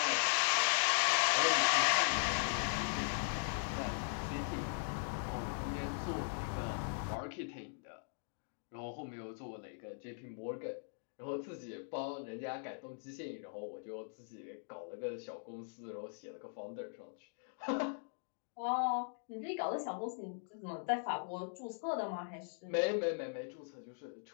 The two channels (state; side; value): silent; right; digital silence